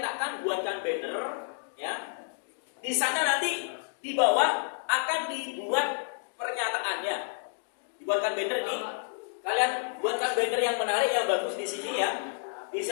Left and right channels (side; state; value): right; silent; digital silence